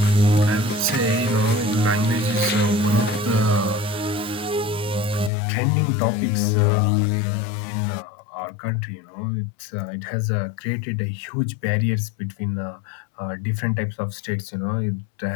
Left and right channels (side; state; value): right; drops out; at 5.3 s